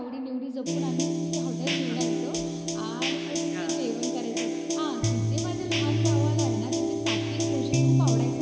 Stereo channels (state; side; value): identical; both; correlation 1.00